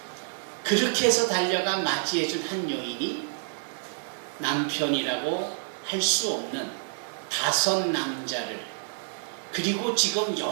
그렇게 해서 달려가 맞이해준 한 여인이 남편이라고 할 수 없는 5 남자를, 그리고 지금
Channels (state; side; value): silent; left; digital silence